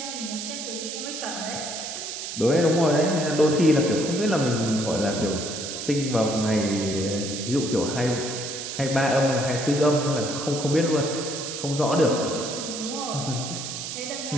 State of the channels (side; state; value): right; noise; hiss, 7 dB below the sound